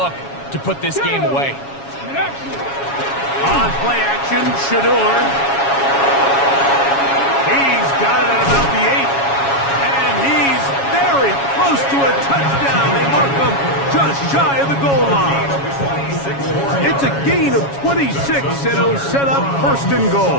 to put this game away. On play action, Shador. He's got it at about the 8. And he's very close close to a touchdown. They mark them just shy of the goal line. It's a gain of 26, and it'll set up first and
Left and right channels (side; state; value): right; late; 7.2 ms